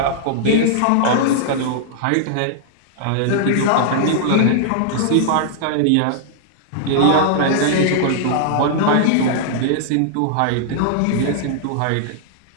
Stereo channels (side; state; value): both; different; correlation -0.01